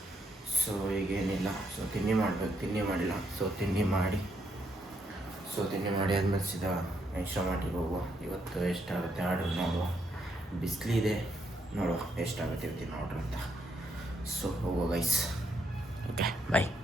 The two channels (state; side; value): normal; both; correlation 0.76